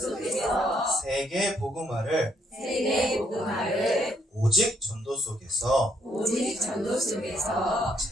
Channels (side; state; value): both; normal; correlation 0.72